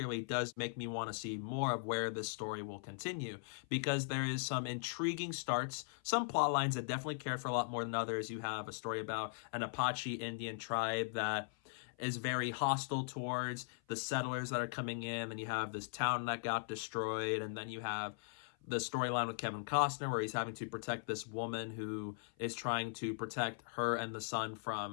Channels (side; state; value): right; silent; 51 dB below the other